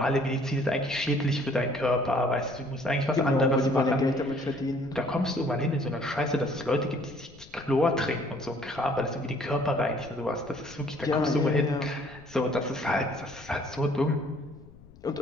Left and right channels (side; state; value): left; noise; rumble, 22 dB below the sound